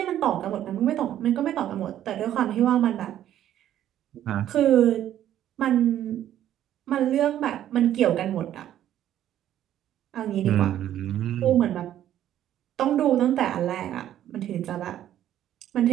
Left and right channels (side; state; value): left; quieter; 11.6 dB